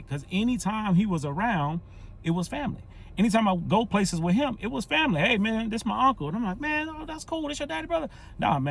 because anytime he was around, it was family. Anytime I go places with him, it was family. Hey, man, this is my uncle. And I'm like, man, oh, that's cool. This your daddy, brother? Nah,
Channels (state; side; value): identical; both; correlation 1.00